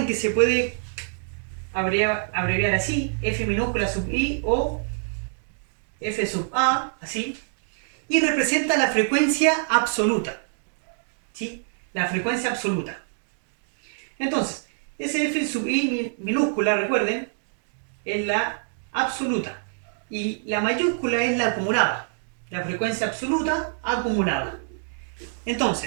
que se puede abreviar así, F minúscula sub I o F sub A, así, y representa la frecuencia absoluta, ¿sí?, la frecuencia absoluta. Entonces, ese F sub I minúscula, recuerden, es la absoluta. Y la mayúscula es la acumulada. La frecuencia absoluta acumulada.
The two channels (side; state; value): left; silent; digital silence